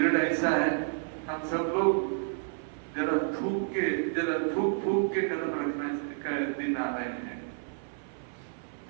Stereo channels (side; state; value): left; silent; 55 dB below the other